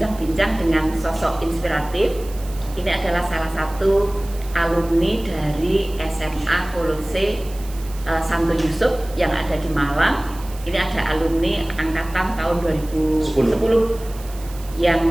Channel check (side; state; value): right; noise; hiss, 19 dB below the sound